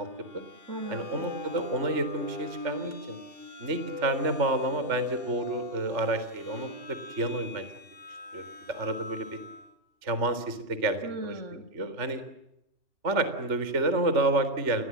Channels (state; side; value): late; left; 3.4 ms